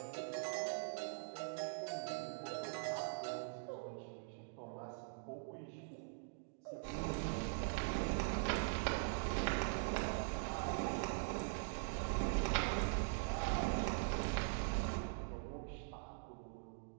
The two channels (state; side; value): silent; left; digital silence